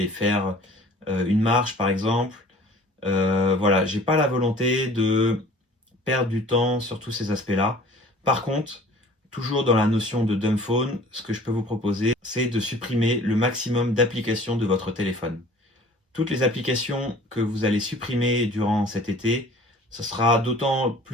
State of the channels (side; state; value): both; normal; correlation 0.48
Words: faire une marche par exemple. Voilà, j'ai pas la volonté de perdre du temps sur tous ces aspects-là. Par contre, toujours dans la notion de dumb phone, ce que je peux vous proposer, c'est de supprimer le maximum d'applications de votre téléphone. Toutes les applications que vous allez supprimer durant cet été, ce sera d'autant